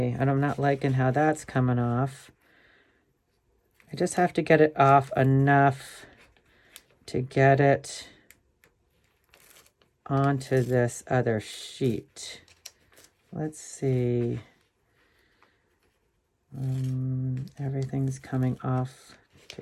and I'm not liking how that's coming off. I just have to get it off enough to get it onto this other sheet. Let's see. Everything's coming off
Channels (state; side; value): identical; both; correlation 1.00